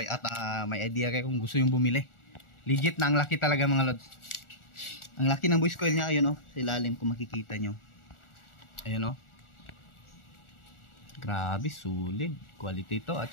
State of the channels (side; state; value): right; late; 1.4 ms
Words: may idea kayo kung gusto yung bumili. Legit na, ang laki talaga mga lods. Ang laki ng voice coil niya, ayun sa ilalim kung makikita nyo. Ayun grabe, solid quality to, at